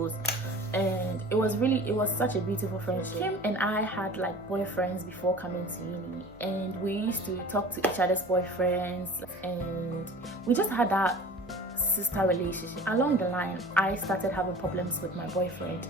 And it was such a beautiful friendship. Kim and I had like boyfriends before coming to uni, and we used to talk to each other's boyfriends, and we just had that sister relationship. Along the line, I started having problems with my boyfriend,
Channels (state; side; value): noise; right; hum, 25 dB below the sound